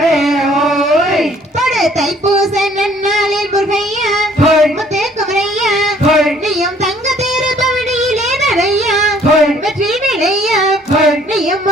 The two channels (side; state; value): both; normal; correlation 0.59